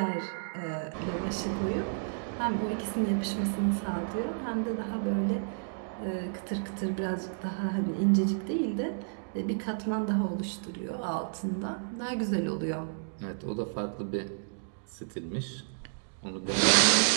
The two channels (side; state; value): left; silent; digital silence